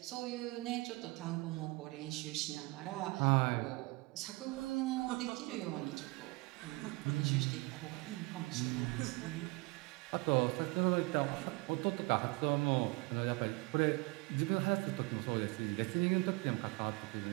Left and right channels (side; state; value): left; quieter; 25.2 dB